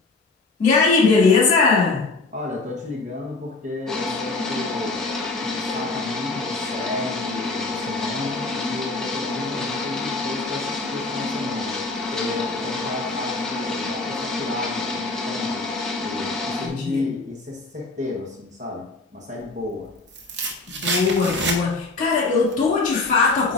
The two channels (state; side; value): quieter; right; 3.5 dB